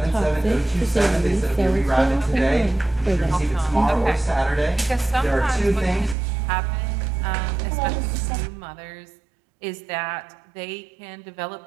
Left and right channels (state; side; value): drops out; left; at 6.2 s